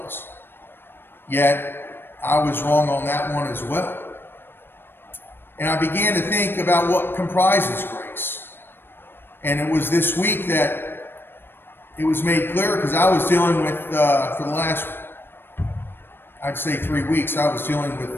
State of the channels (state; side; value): late; right; 0.10 ms